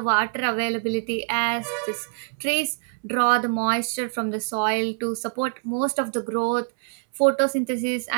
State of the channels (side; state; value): left; silent; 62 dB below the other